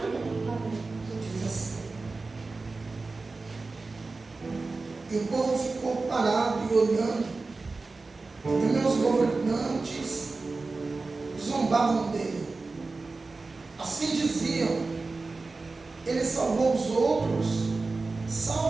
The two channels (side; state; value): left; quieter; 3.7 dB